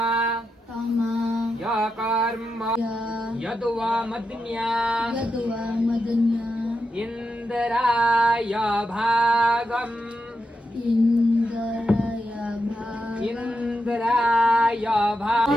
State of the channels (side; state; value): both; normal; correlation 0.87